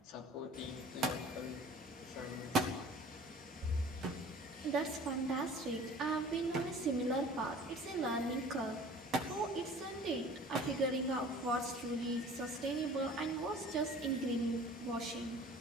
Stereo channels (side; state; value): both; normal; correlation 0.46